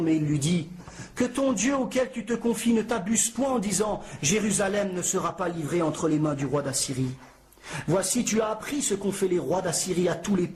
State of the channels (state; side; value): identical; both; correlation 1.00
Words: mais il lui dit que ton Dieu auquel tu te confies ne t'abuse point en disant « Jérusalem ne sera pas livrée entre les mains du roi d'Assyrie ». Voici, tu as appris ce qu'ont fait les rois d'Assyrie à tous les